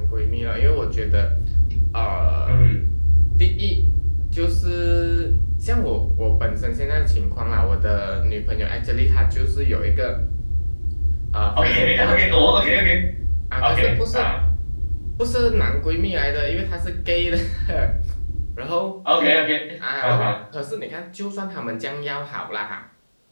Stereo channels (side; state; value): both; inverted; correlation -1.00